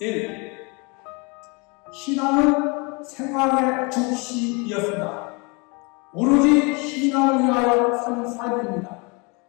신앙은 생활의 중심이었습니다. 오로지 신앙을 위하여 사는 삶입니다.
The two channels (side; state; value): right; quieter; 30.1 dB